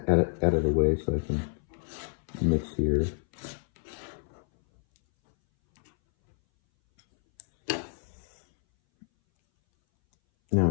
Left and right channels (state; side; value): silent; right; 59 dB below the other